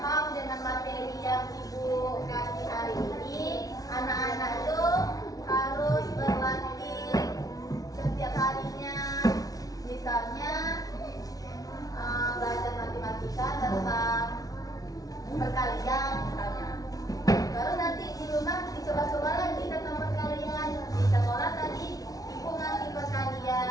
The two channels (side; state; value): right; late; 0.18 ms